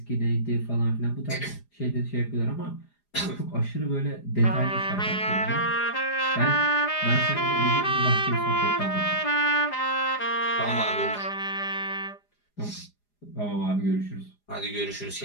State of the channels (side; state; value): right; late; 4.9 ms